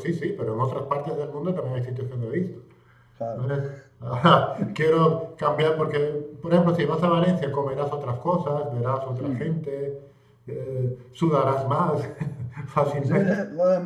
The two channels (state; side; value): identical; both; correlation 1.00